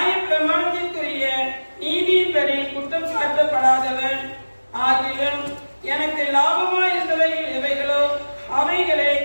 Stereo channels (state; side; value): inverted; both; correlation -1.00